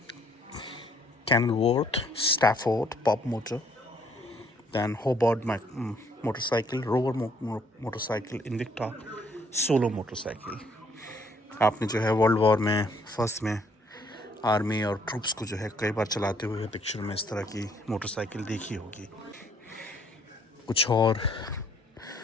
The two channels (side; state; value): both; normal; correlation 0.65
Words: Kenilworth, Stafford, Pop motor, then Hobart motorcycle, Rover motorcycle, Invicta solo motorcycle. आपने जो है वर्ल्ड वॉर में फर्स्ट में आर्मी और ट्रूप्स को जो है कई बार चलाते हुए पिक्चर में इस तरह की मोटरसाइकिल देखी होगी। कुछ और